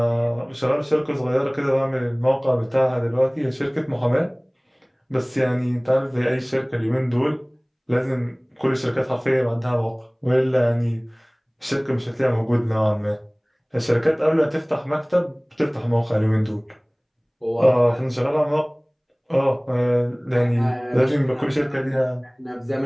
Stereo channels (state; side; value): identical; both; correlation 1.00